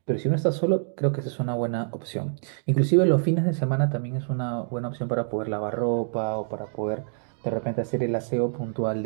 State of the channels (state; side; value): silent; left; digital silence